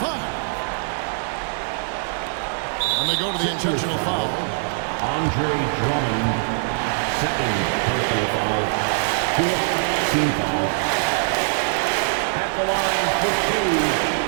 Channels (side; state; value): left; silent; digital silence